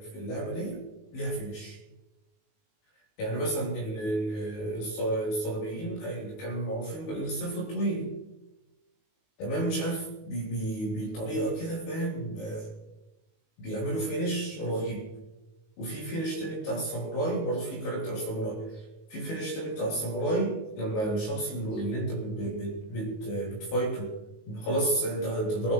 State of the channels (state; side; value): late; right; 19 ms